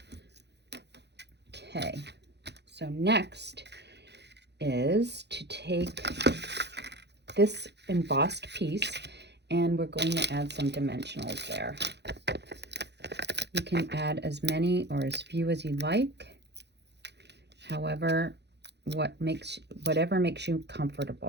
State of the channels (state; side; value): late; left; 0.50 ms